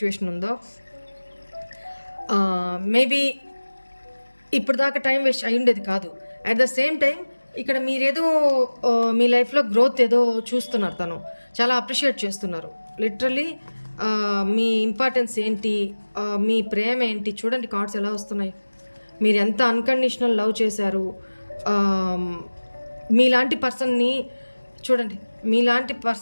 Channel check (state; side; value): inverted; both; correlation -1.00